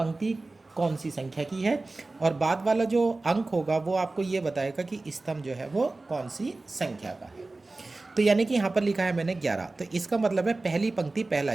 कौन सी संख्या की है और बाद वाला जो अंक होगा वो आपको ये बताएगा कि स्तंभ जो है वो कौन सी संख्या का है। तो यानी कि यहाँ पर लिखा है मैंने 11, तो इसका मतलब है पहली पंक्ति पहला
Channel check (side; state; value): left; quieter; 3.2 dB